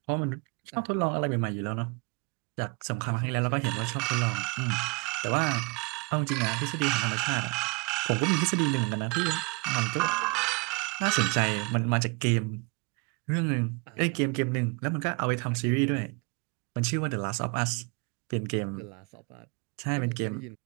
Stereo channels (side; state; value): left; quieter; 30.2 dB